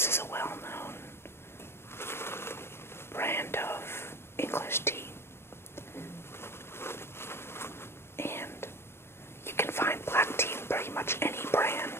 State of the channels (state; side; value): late; right; 0.12 ms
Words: is a well-known brand of English tea. And you can find black tea in pretty much any